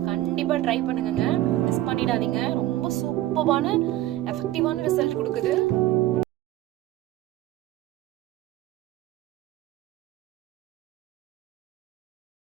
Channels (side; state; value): left; quieter; 15.1 dB